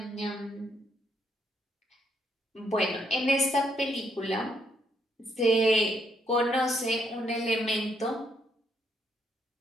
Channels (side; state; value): both; normal; correlation 0.73